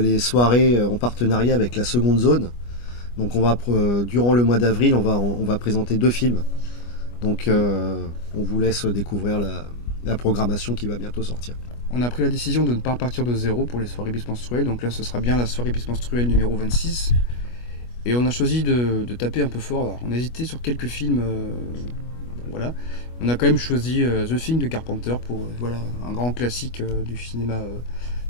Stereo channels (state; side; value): late; right; 25 ms